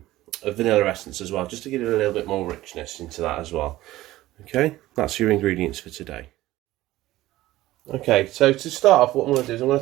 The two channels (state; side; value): quieter; left; 16.4 dB